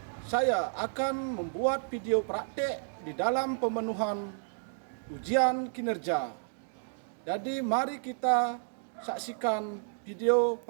saya akan membuat video praktek di dalam pemenuhan ujian kinerja. Jadi mari kita saksikan video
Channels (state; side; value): silent; left; digital silence